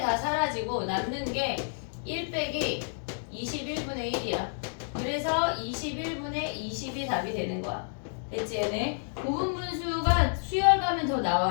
사라지고 남는 게 1 빼기 21분의 1이야. 그래서 21분의 20이 답이 되는 거야. 됐지? 얘네 고분분수가 수열 가면 더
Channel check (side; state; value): right; silent; 58 dB below the other